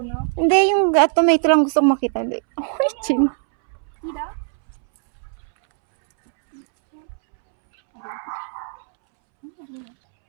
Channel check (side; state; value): left; silent; 65 dB below the other